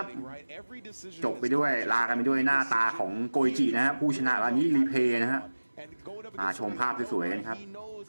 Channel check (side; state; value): both; inverted; correlation -1.00